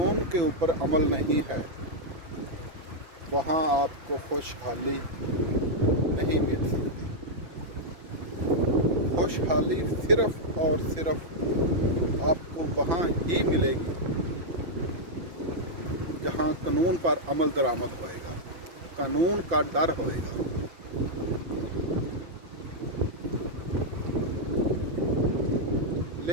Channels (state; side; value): late; left; 5.9 ms